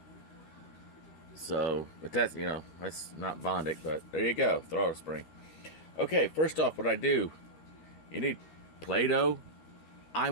So, but that's, you know, that's not Bondic, but there you go, throttle spring. Okay, first off, what I do, you need Play-Doh.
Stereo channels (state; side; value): late; right; 13 ms